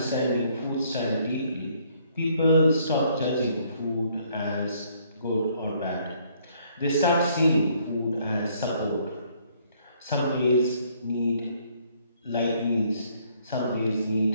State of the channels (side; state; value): both; inverted; correlation -0.65